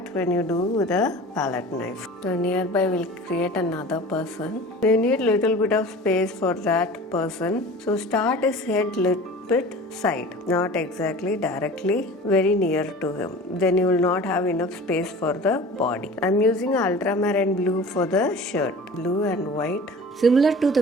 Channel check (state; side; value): normal; both; correlation 0.40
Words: when you do with a palette knife. So nearby we'll create another person. You need little bit of space for that person. So start his head little bit side, not exactly directly very near to him. Then you will not have enough space for the body. I'm using ultramarine blue for the shirt, blue and white. Similar to